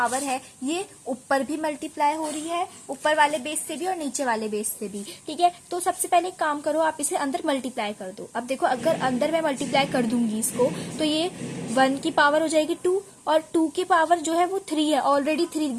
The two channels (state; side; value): identical; both; correlation 1.00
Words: है ये ऊपर भी मल्टीप्लाई हो रही है, ऊपर वाले बेस से भी और नीचे वाले बेस से भी, ठीक है। तो सबसे पहले एक काम करो, आप इसे अंदर मल्टीप्लाई कर दो। अब देखो अगर अंदर मैं मल्टीप्लाई कर दूंगी इसको, तो ये 1 की पावर हो जाएगी 2, और 2 की पावर जो है वो 3 है, ऑलरेडी 3